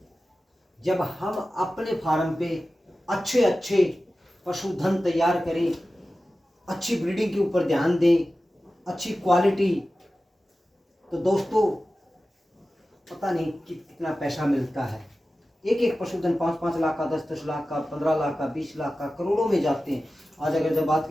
जब हम अपने फार्म पे अच्छे अच्छे पशुधन तैयार करें, अच्छी ब्रीडिंग के ऊपर ध्यान दें, अच्छी क्वालिटी, तो दोस्तों पता नहीं कितना पैसा मिलता है। एक एक पशुधन 5-5 लाख का, 10-10 लाख का, 15 लाख का, 20 लाख का, करोड़ों में जाते हैं। आज अगर जब बात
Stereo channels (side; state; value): both; normal; correlation 0.94